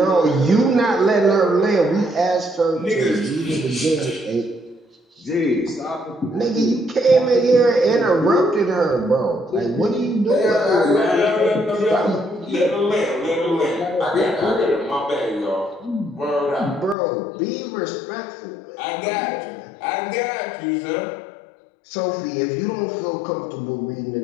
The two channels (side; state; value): right; drops out; at 16.9 s